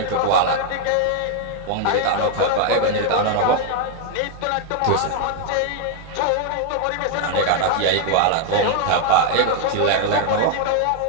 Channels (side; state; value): both; different; correlation 0.00